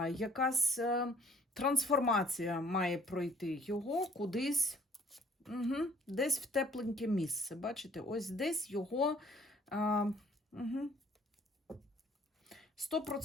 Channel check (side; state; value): both; normal; correlation 0.58